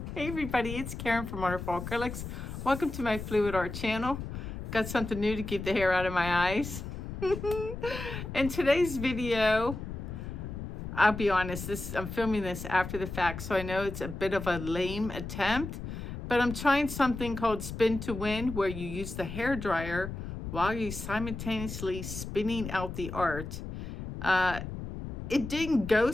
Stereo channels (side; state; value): left; noise; rumble, 8 dB below the sound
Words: Hey everybody, it's Karen from Wonderful Acrylics. Welcome to my Fluid Art channel. Got something new to keep the hair out of my eyes. In today's video, I'll be honest, I'm filming this after the fact, so I know it's a bit of a lame attempt, but I'm trying something called spin to win, where you use the hair dryer while you're simultaneously spinning out the art. It didn't go